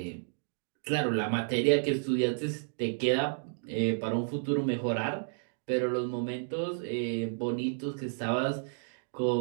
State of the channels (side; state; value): left; silent; digital silence